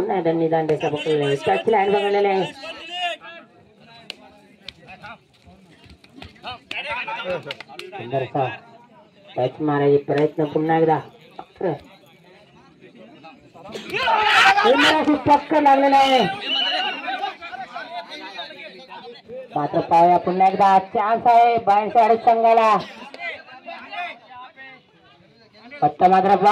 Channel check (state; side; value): identical; both; correlation 1.00